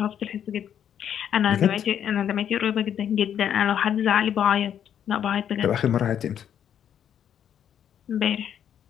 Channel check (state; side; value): quieter; right; 9.3 dB